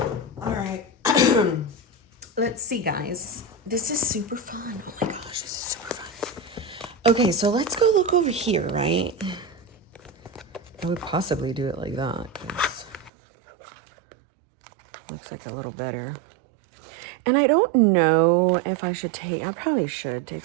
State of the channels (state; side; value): drops out; left; at 13.1 s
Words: All right. Let's see, guys. This is super fun. Oh my gosh, this is super fun. Okay, so let's go look over here, right? I would possibly do it like that, because it looks like a little better. And I don't know if I should take, I probably should take